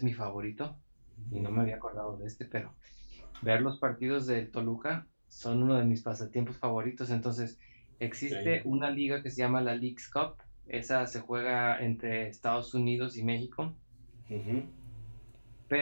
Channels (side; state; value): both; inverted; correlation -1.00